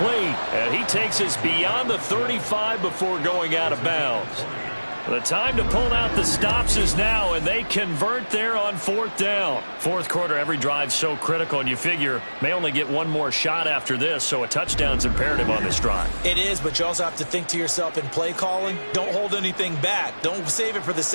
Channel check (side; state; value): both; inverted; correlation -1.00